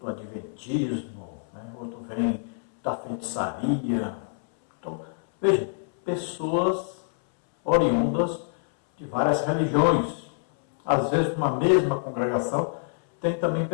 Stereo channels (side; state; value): right; silent; 61 dB below the other